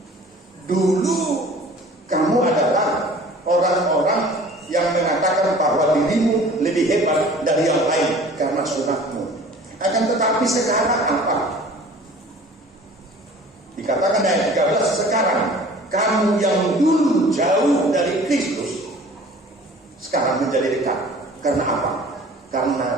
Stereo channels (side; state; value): both; normal; correlation 0.47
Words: Dulu kamu adalah orang-orang yang mengatakan bahwa dirimu lebih hebat dari yang lain karena sunatmu. Akan tetapi sekarang apa? Dikatakan ayat 13, sekarang kamu yang dulu jauh dari Kristus sekarang menjadi dekat. Karena apa?